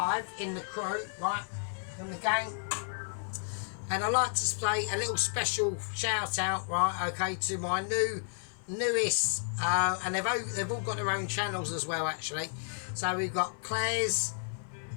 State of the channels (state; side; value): silent; right; 56 dB below the other